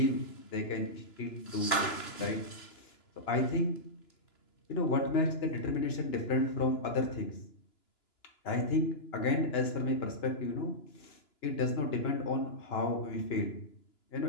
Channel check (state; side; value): late; right; 2.9 ms